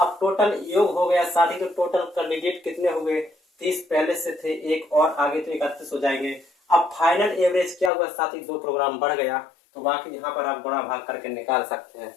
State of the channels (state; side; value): drops out; right; at 7.9 s